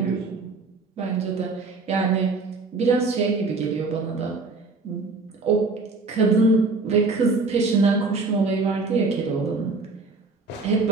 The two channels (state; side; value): quieter; left; 3.8 dB